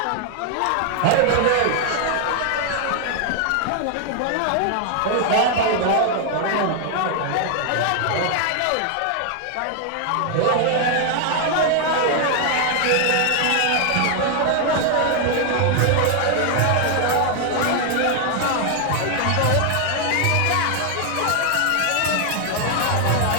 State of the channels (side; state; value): both; different; correlation 0.00